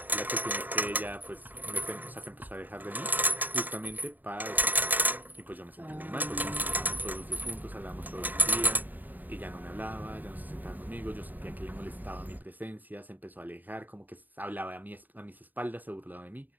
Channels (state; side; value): late; left; 0.087 ms